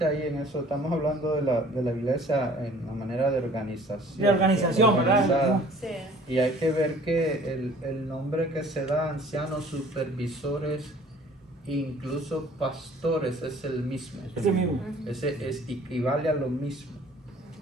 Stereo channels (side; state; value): both; normal; correlation 0.52